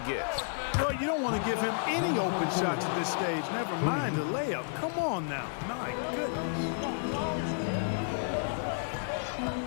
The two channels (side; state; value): right; silent; 57 dB below the other